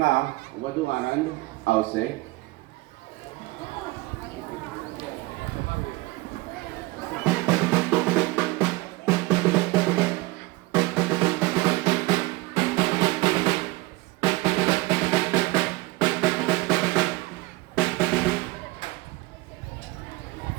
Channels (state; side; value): quieter; left; 21.4 dB